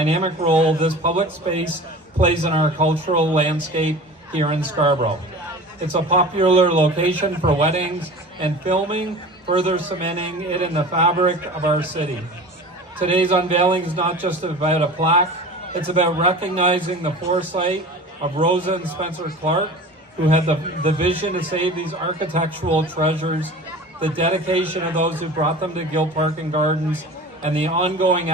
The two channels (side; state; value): both; normal; correlation 0.37